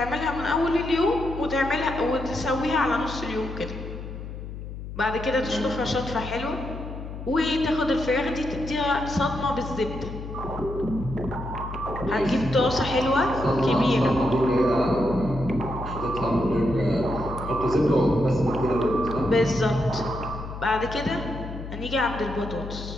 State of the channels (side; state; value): left; noise; hum, 9 dB below the sound